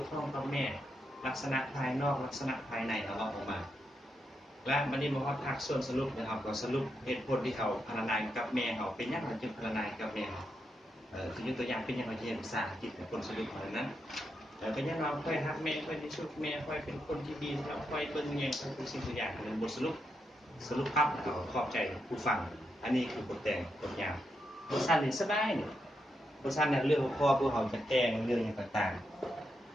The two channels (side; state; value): both; normal; correlation 0.83